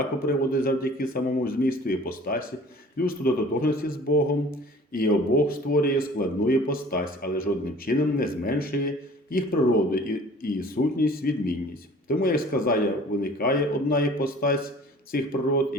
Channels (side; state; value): both; normal; correlation 0.48